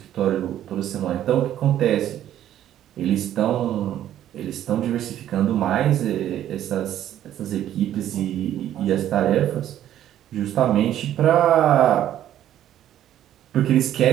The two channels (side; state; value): left; quieter; 11.6 dB